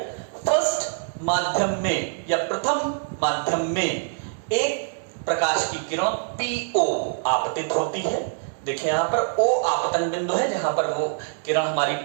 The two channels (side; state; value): left; silent; digital silence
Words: फर्स्ट माध्यम में या प्रथम माध्यम में एक प्रकाश की किरण PO आपतित होती है। देखिए यहां पर O आपतन बिंदु है जहां पर वो किरण हमारी